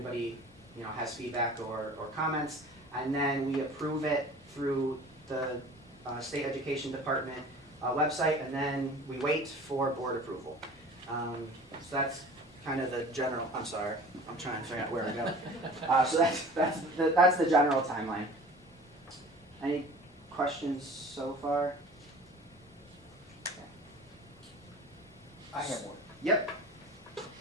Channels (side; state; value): both; normal; correlation 0.43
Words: you know, has feedback or comments, and then we approve it through the State Education Department website, and then we wait for board approval. So that's kind of the general, I'm sorry, I'm trying to figure out where to go. So that's the general timeline. Any questions so far? I have one. Yep.